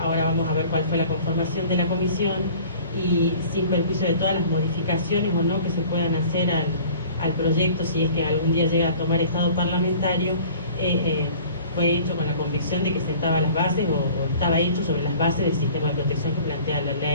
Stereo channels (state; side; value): inverted; both; correlation -0.47